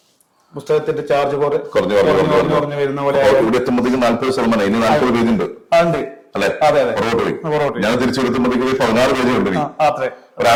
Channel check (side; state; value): both; identical; correlation 1.00